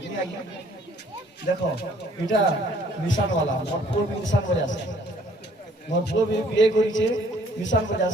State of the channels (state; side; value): normal; both; correlation 0.60